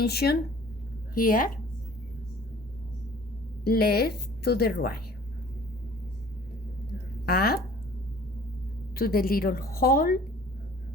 here, left to the right, up to the little hole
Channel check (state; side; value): normal; both; correlation 0.49